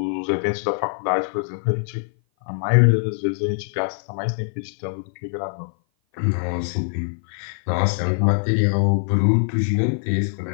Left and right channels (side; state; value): right; silent; 56 dB below the other